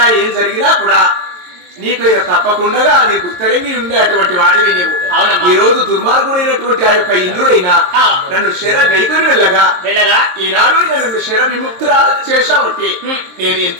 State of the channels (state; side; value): late; left; 22 ms